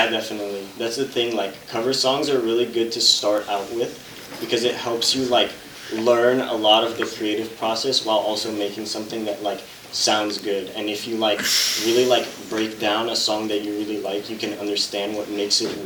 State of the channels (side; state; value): both; identical; correlation 1.00